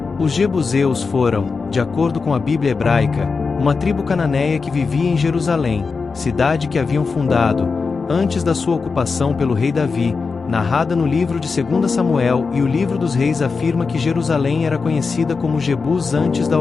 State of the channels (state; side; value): quieter; right; 4.7 dB